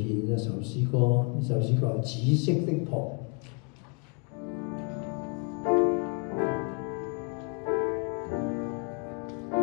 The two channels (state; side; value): quieter; right; 36.9 dB